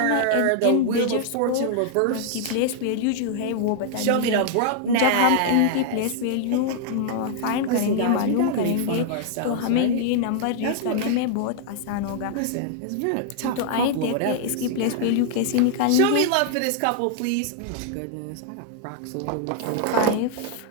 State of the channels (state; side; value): different; both; correlation 0.00